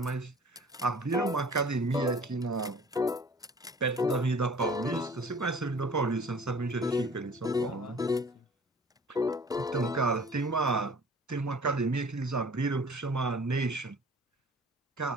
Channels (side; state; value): both; normal; correlation 0.49